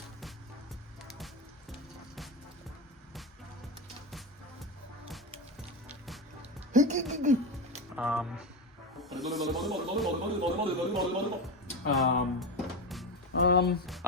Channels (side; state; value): both; normal; correlation 0.19